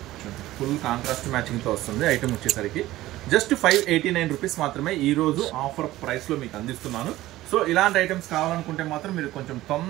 ఫుల్ కాంట్రాస్ట్ మ్యాచింగ్తో వస్తుంది ఐటమ్ వచ్చేసరికి. జస్ట్ 589 రూపీస్ మాత్రమే ఈ రోజు ఆఫర్ ప్రైస్లో మీకు అందిస్తున్నాను. సో ఇలాంటి ఐటమ్స్ కావాలనుకుంటే మాత్రం మీరు కొంచెం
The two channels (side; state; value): left; quieter; 16.2 dB